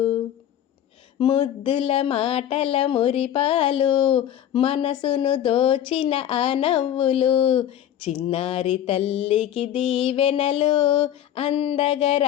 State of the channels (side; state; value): right; quieter; 10.8 dB